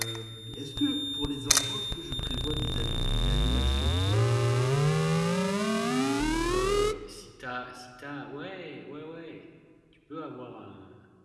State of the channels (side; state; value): both; identical; correlation 1.00